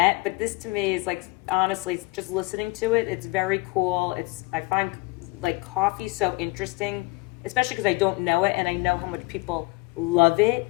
but this to me is like, honestly, just listening to it, it's very cool. I find like coffee so interesting, especially because I don't know it and I know how much people love it.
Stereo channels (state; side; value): quieter; right; 23.9 dB